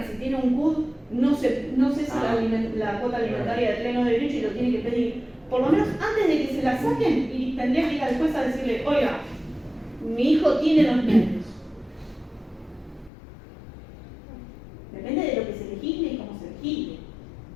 si tiene un CUD, no sé si la cuota alimentaria de pleno derecho y lo tiene que pedir. Por lo menos antes de que se la saquen, y tendría que ir al juez a decirle, oiga, mi hijo tiene 2 niños. Depende de lo que se legisle y cómo se legisle.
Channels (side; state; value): right; drops out; at 13.1 s